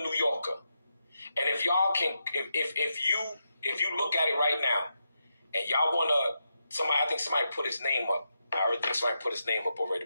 New Yorker. And if y'all can, if you look at it right now, and y'all wanna, I think somebody put his name up. I already think somebody put his name up already.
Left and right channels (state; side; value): inverted; both; correlation -0.85